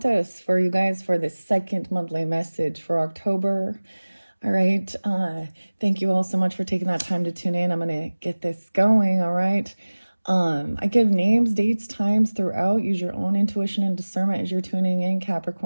for you guys for the second monthly message for October. All right. Thank you all so much for taking that time to tune in. I'm going to get this going. All right. I give names, dates, times throughout. Use your own intuition and discernment as you're tuning in,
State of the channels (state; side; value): inverted; both; correlation -1.00